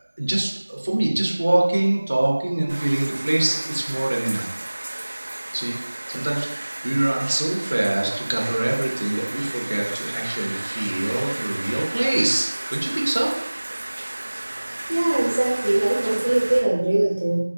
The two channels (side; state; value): both; inverted; correlation -1.00